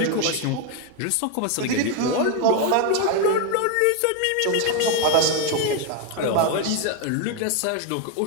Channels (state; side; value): different; both; correlation 0.01